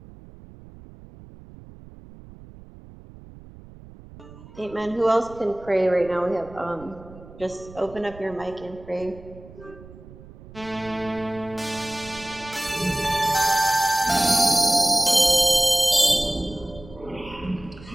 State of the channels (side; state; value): right; noise; rumble, 19 dB below the sound